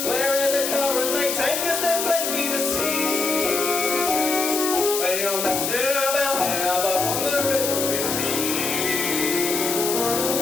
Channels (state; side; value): noise; left; hiss, 1 dB below the sound